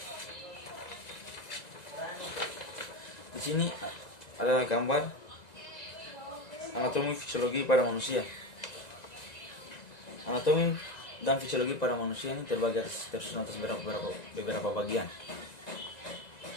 Di sini ada gambar anatomi fisiologi pada manusia. Anatomi dan fisiologi pada manusia ini terbagi tersusun atas beberapa bagian,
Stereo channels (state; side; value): late; right; 1.9 ms